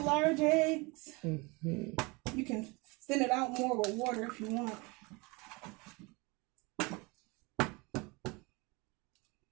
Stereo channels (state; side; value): quieter; left; 26.7 dB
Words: eggs. Mm-hmm. You can thin it out more with water if you want.